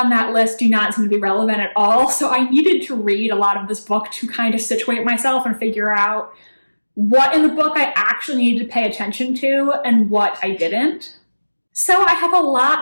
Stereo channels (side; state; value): both; inverted; correlation -1.00